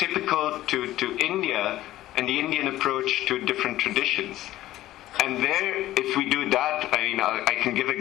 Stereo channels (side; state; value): right; quieter; 14.9 dB